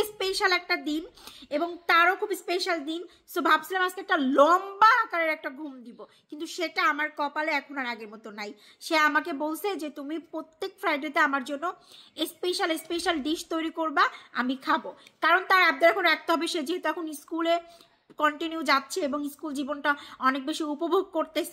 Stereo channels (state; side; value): identical; both; correlation 1.00